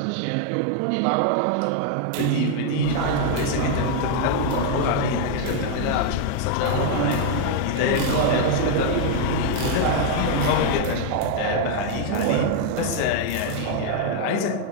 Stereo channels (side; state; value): both; different; correlation 0.00